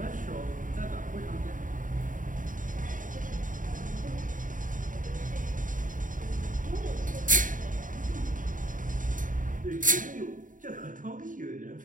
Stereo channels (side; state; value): left; late; 0.38 ms